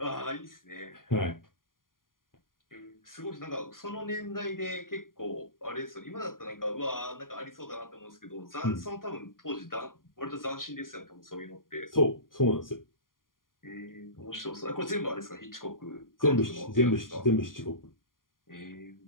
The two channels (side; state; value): right; late; 0.90 ms